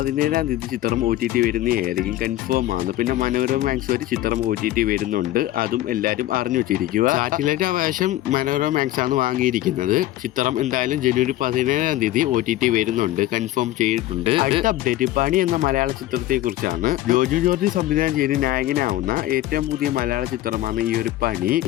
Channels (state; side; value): quieter; right; 15.1 dB